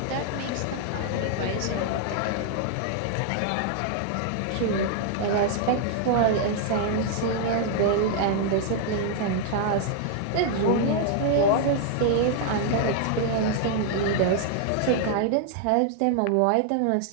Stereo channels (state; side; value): different; both; correlation 0.00